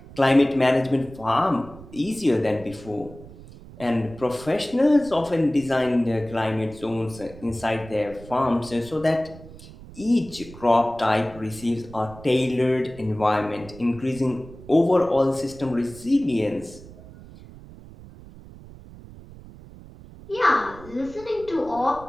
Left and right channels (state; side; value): noise; right; rumble, 18 dB below the sound